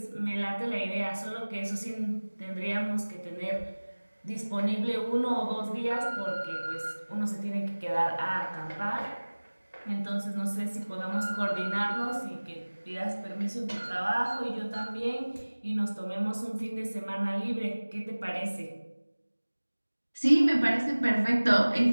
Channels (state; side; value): inverted; both; correlation -1.00